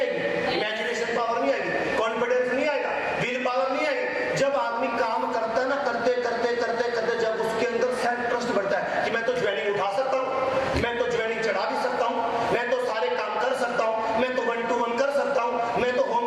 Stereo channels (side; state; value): both; identical; correlation 1.00